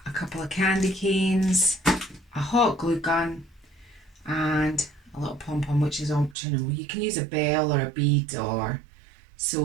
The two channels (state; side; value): drops out; left; at 6.4 s